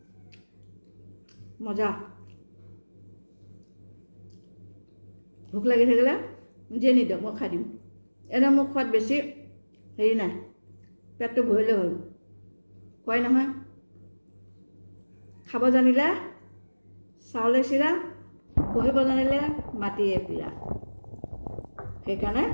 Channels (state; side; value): inverted; both; correlation -1.00